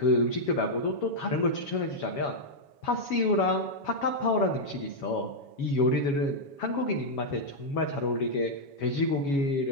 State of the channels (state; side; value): late; right; 7.2 ms